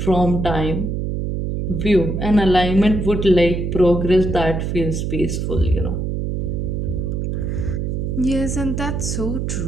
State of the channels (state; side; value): noise; right; hum, 2 dB below the sound